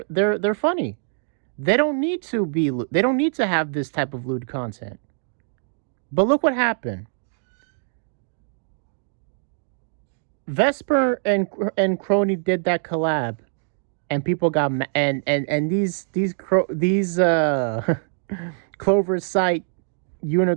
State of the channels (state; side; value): silent; left; digital silence